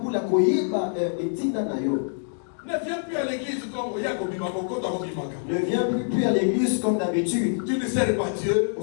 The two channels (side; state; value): right; silent; digital silence